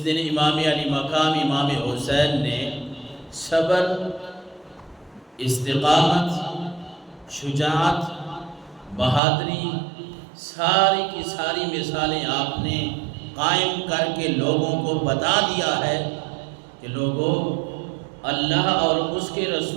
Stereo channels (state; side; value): drops out; left; at 9.2 s